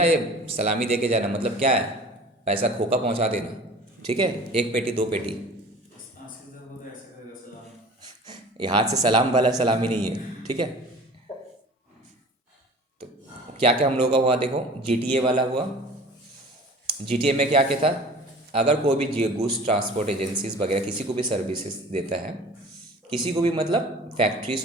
ये सलामी दे के जाना, मतलब क्या है? पैसा खोका पहुंचा देना, ठीक है, 1 पेटी 2 पेटी। ये हाथ से सलाम वाला सलामी नहीं है, ठीक है। तो क्या क्या हम लोगों का हुआ देखो, GTA वाला हुआ। GTA में क्या क्या था? अगर कोई भी गुड्स ट्रांसपोर्ट एजेंसीज वगैरह किसी को भी सर्विसेज देता है, किसी को भी, मतलब फैक्ट्री,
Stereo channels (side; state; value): both; normal; correlation 0.43